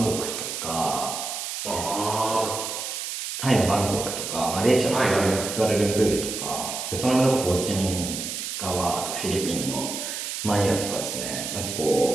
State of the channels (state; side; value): noise; right; hiss, 5 dB below the sound